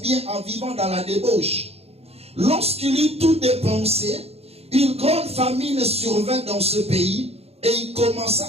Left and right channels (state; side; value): late; left; 0.29 ms